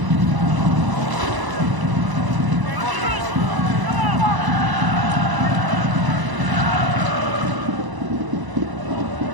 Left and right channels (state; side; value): late; left; 1.0 ms